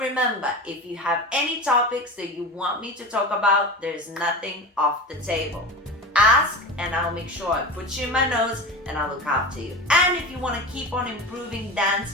if you have any topics that you want me to talk about, there's nothing off the table. Ask and I'll make sure I put you in my notes and I'll look after you. And if you want to keep on improving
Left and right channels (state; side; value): normal; both; correlation 0.28